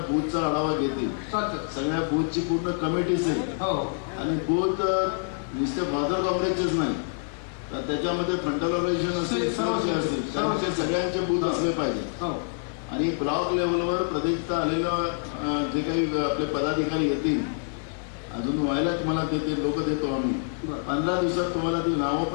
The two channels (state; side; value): silent; right; 61 dB below the other